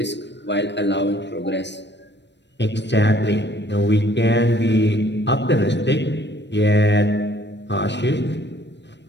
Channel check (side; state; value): right; late; 0.51 ms